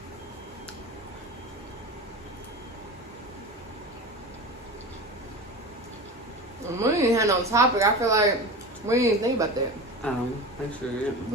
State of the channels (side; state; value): both; normal; correlation 0.29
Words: We ain't had no topic. I feel like we didn't think about that. I sure